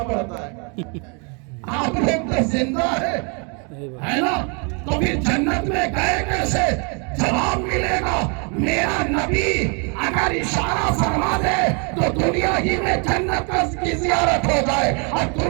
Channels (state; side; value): quieter; left; 35.1 dB